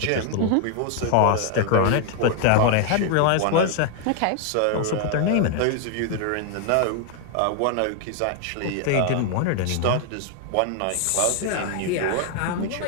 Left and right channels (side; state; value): both; different; correlation 0.00